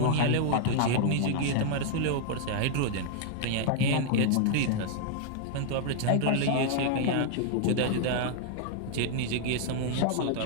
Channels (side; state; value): both; different; correlation -0.01